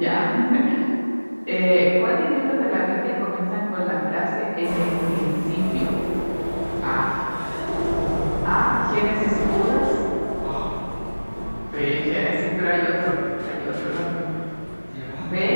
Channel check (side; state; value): both; inverted; correlation -1.00